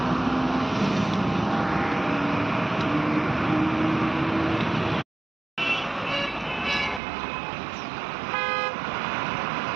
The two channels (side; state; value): left; drops out; at 7.0 s